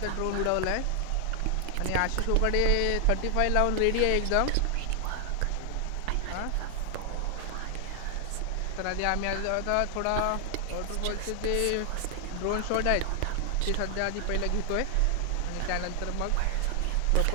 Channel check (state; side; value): different; both; correlation 0.00